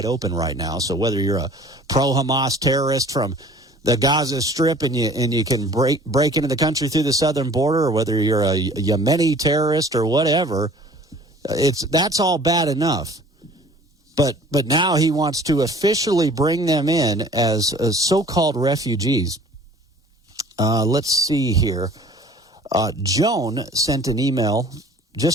open right now. So whether you're a pro-Hamas terrorist from the Gaza Strip and you can break into the country through the southern border, or whether you're a Yemeni terrorist or whatever, that's all bad enough. But now he wants to officially bring them in as so-called refugees. Let's see here. Joan sent an email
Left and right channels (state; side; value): normal; both; correlation 0.49